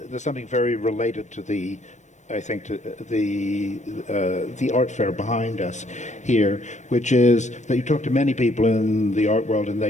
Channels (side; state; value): right; late; 0.34 ms